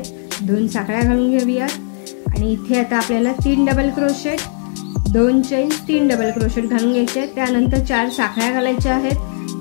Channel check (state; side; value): silent; right; digital silence